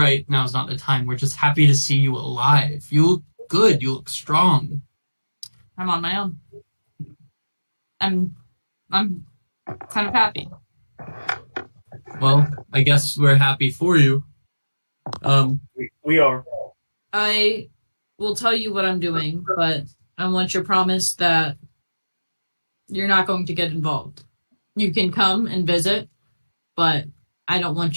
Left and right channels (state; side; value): inverted; both; correlation -1.00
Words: Now's not the time. We're just happy to see you alive. You look good. You look strong. I'm on my own. I'm kind of happy. Well, I guess we're happy for you. We are. I will tell you what I'm doing, but I want your promise that you're not going to get involved. You can come and visit, but I don't